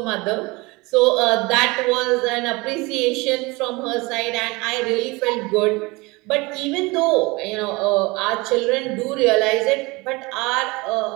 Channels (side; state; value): left; quieter; 24.2 dB